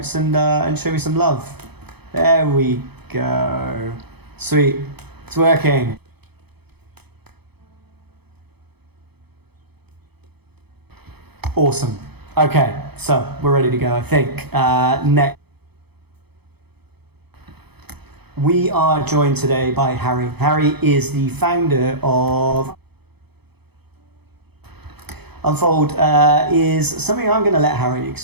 and show me some love. There we go. Sweet. It's working. Awesome. Okay, so we're ready to go, I think. Next. We are joined today by Harry. Harry is the founder of Unfold. Is something I'm going to let Harry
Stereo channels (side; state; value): left; late; 0.98 ms